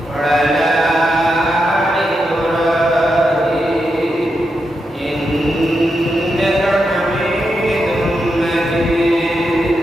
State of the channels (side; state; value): both; normal; correlation 0.85